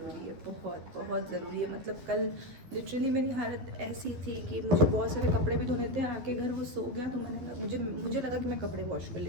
है, बहुत बहुत ज़रूरी है। मतलब कल लिटरली मेरी हालत ऐसी थी कि मुझे बहुत सारे कपड़े भी धोने थे, आके घर वो सो गया तो मुझे लगा कि मैं कपड़े वॉश कर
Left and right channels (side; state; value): left; late; 12 ms